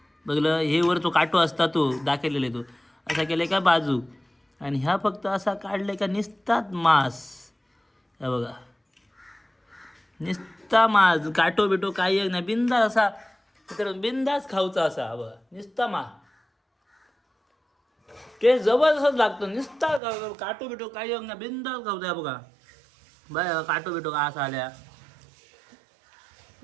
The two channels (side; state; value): left; drops out; at 20.0 s